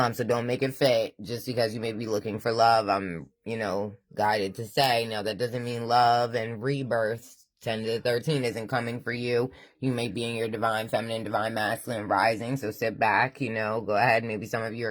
So don't make it fit just because you may be looking for love. I'm, guided to say, now that doesn't mean love and rebirth 10 to 13 isn't coming for you. You may be in your divine feminine, divine masculine rising, so sit back, go ahead. Maybe some of you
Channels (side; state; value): both; identical; correlation 1.00